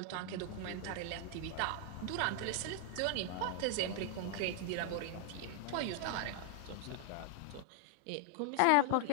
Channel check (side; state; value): both; different; correlation 0.00